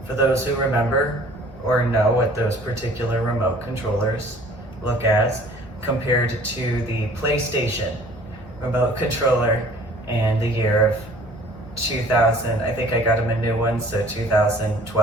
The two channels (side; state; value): left; noise; hum, 22 dB below the sound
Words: For those who remember or know what those particular remote controllers look as, compared to the PlayStation remote controller in the year of 2000. I think I got him a new one, so